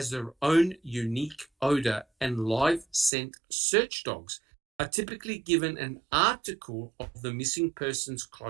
their own unique odor, and live scent search dogs are typically given an article of the missing person's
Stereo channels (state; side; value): drops out; left; at 3.1 s